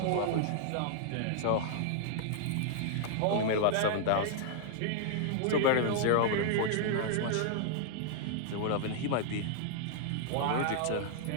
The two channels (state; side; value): different; both; correlation -0.01